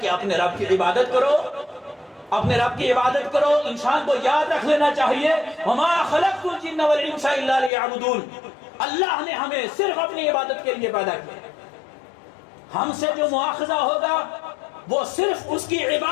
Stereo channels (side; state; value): right; drops out; at 7.7 s